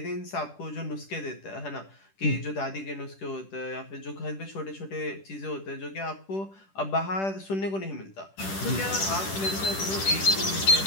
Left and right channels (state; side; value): late; right; 10 ms